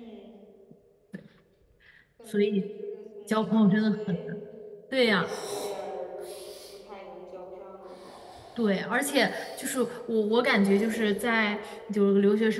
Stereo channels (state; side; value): identical; both; correlation 1.00